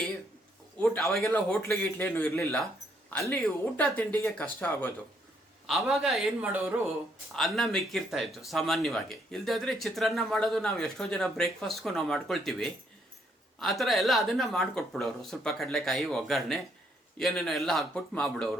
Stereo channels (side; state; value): both; normal; correlation 0.71